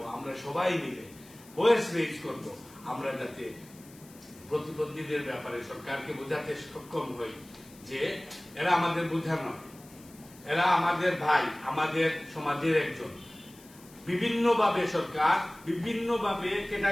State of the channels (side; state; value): left; noise; hiss, 23 dB below the sound